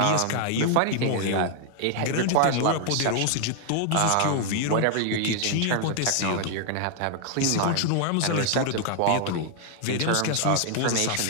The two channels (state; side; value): different; both; correlation 0.00